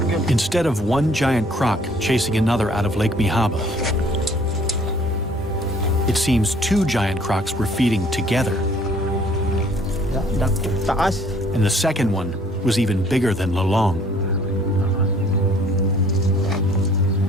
Instead of one giant croc chasing another out of Lake Mihaba, it seems 2 giant crocs were feeding together. And the second one was even bigger than Lolong.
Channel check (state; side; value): normal; both; correlation 0.57